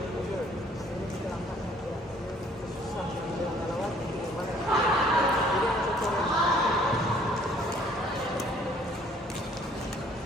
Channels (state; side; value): normal; both; correlation 0.59